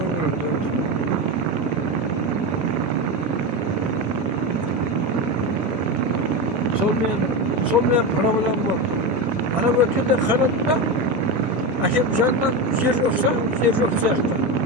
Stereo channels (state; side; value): normal; both; correlation 0.17